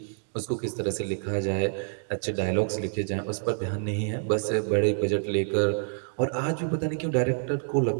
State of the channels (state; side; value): silent; left; digital silence